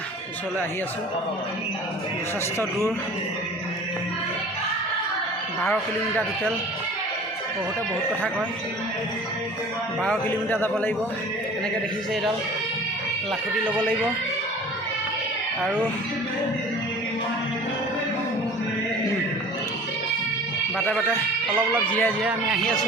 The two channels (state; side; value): normal; both; correlation 0.44